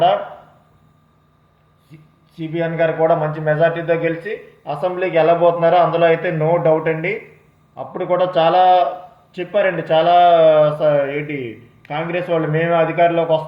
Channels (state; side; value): identical; both; correlation 1.00